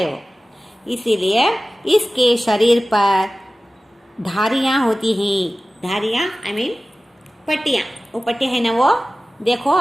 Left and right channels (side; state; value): both; normal; correlation 0.97